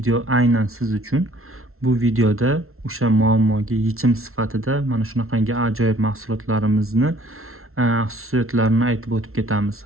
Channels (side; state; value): left; late; 0.62 ms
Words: aynan siz uchun. Bu videoda o'sha muammoga yechim sifatida mana shunaqangi ajoyib mahsulotlarimizni xususiyatlarini aytib o'tib ketamiz.